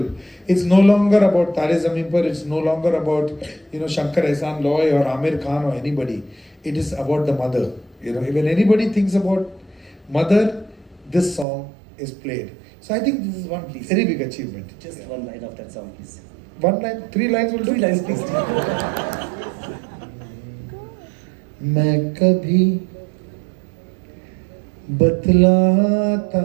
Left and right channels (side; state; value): left; drops out; at 11.5 s